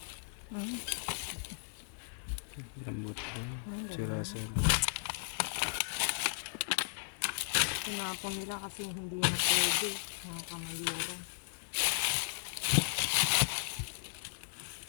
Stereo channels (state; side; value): silent; right; digital silence